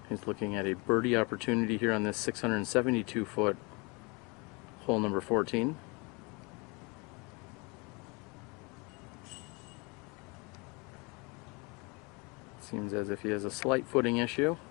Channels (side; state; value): right; quieter; 28.9 dB